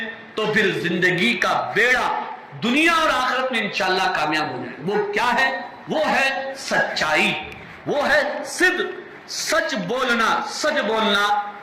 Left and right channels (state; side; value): identical; both; correlation 1.00